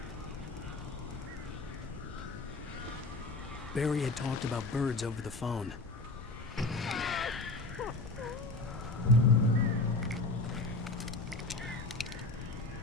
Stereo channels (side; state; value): right; quieter; 3.2 dB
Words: Barry had talked about birds over the phone.